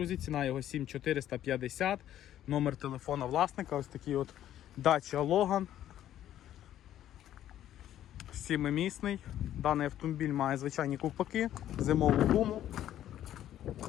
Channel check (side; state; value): right; quieter; 11.8 dB